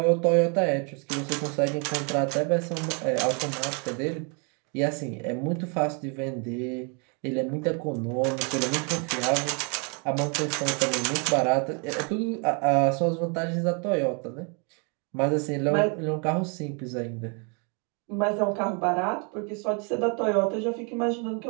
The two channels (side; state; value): left; quieter; 36.1 dB